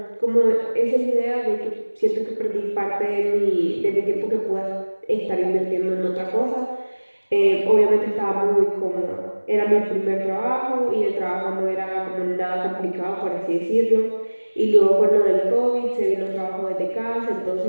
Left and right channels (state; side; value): inverted; both; correlation -1.00